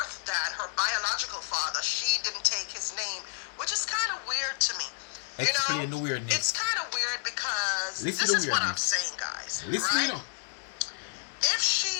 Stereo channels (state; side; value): silent; right; digital silence